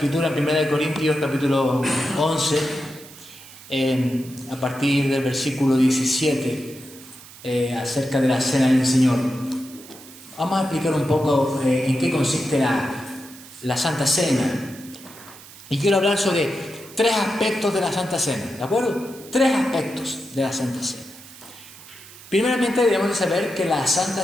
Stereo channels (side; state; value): right; noise; hiss, 19 dB below the sound